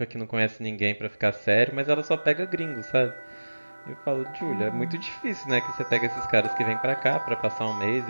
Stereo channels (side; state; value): both; inverted; correlation -1.00